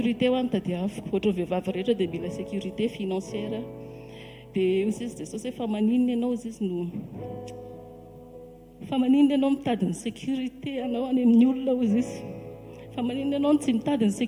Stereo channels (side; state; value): both; identical; correlation 1.00